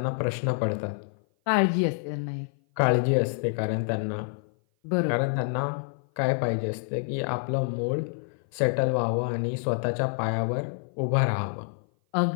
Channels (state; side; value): silent; right; 55 dB below the other